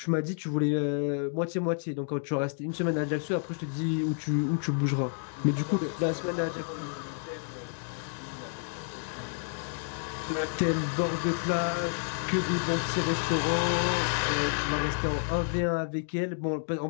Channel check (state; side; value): silent; right; 58 dB below the other